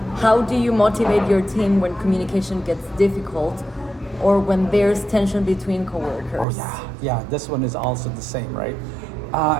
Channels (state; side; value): drops out; left; at 6.5 s